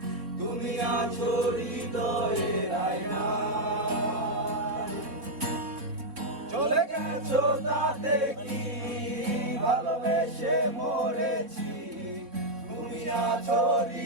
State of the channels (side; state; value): left; late; 3.5 ms